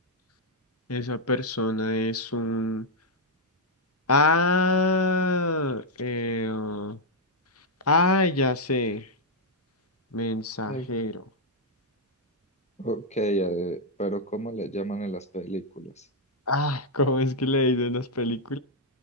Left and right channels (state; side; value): normal; both; correlation -0.02